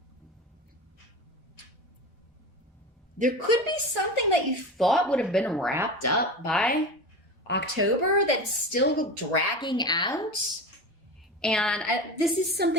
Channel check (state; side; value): normal; both; correlation 0.28